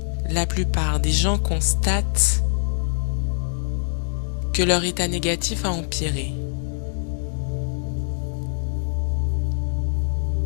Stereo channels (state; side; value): silent; right; 62 dB below the other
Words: La plupart des gens constatent que leur état négatif a empiré.